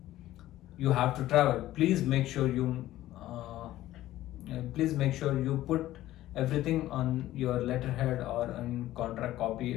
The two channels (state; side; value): quieter; right; 14.8 dB